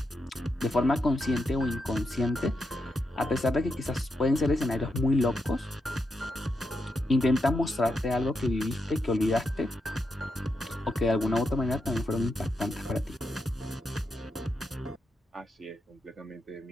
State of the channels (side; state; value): both; normal; correlation 0.84